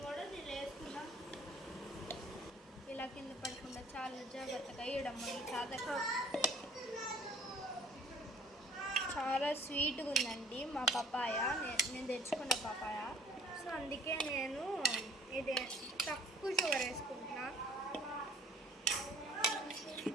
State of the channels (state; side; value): normal; both; correlation 0.54